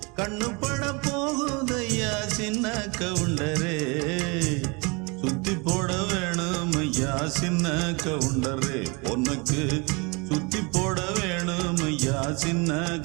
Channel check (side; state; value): left; quieter; 29.2 dB